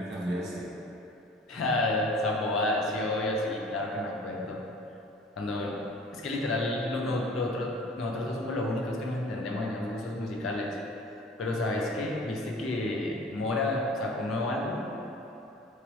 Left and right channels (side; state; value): both; normal; correlation 0.45